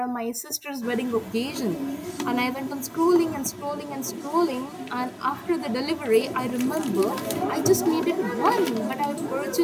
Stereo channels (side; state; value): both; identical; correlation 1.00